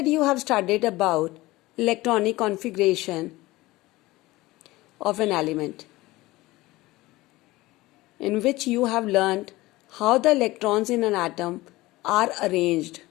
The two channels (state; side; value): quieter; right; 19.3 dB